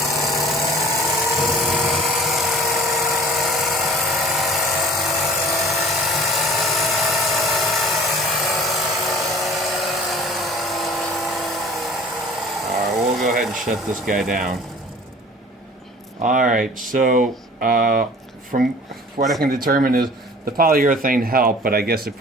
Alright, we'll go ahead and shut this guy down. Alright, so from what I can determine is the polyurethane helped, but I guess it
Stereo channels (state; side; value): normal; both; correlation 0.47